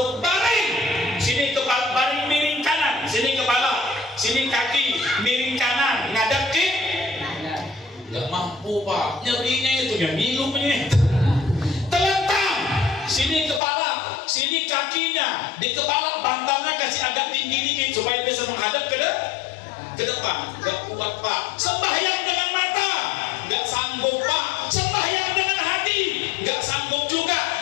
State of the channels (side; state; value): right; drops out; at 13.6 s